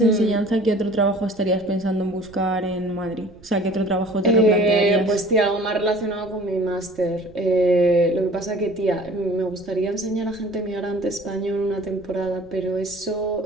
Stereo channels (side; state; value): right; noise; rumble, 24 dB below the sound